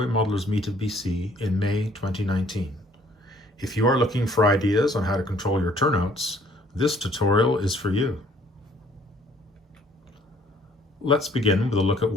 Modelers Meet of BC in May 2019. If you are looking for ideas on how to control your turnouts, this tutorial is for you. Let's begin with a look at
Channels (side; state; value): both; normal; correlation 0.60